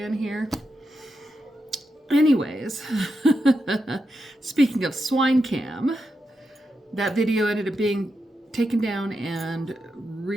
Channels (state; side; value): normal; both; correlation 0.86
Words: here. Anyways, speaking of swine cam, that video ended up being taken down and